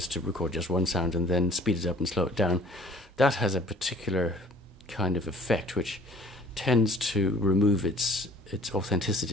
to record just one sound and then speed it up and slow it down. That has a particular kind of effect which tends to remove its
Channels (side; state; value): both; normal; correlation 0.53